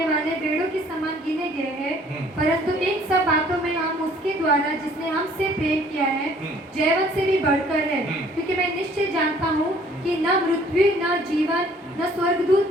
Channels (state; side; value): normal; both; correlation 0.57